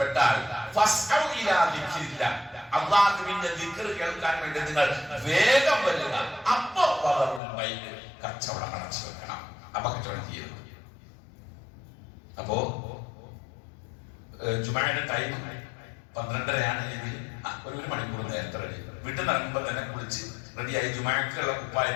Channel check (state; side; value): drops out; right; at 7.4 s